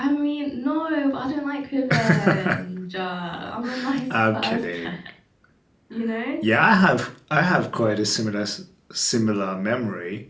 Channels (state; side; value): identical; both; correlation 1.00